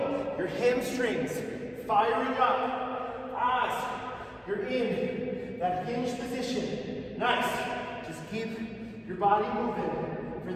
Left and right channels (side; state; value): both; identical; correlation 1.00